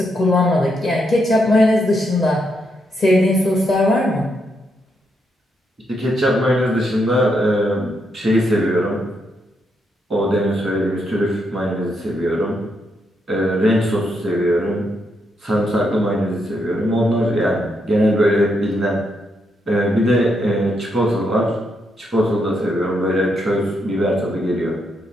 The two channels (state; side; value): normal; both; correlation 0.79